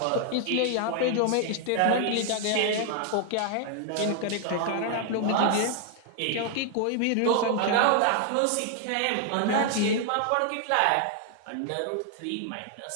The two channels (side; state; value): both; different; correlation 0.00